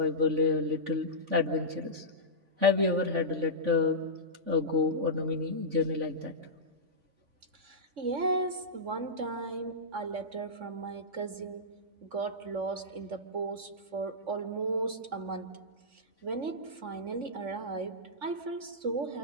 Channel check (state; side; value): late; left; 3.5 ms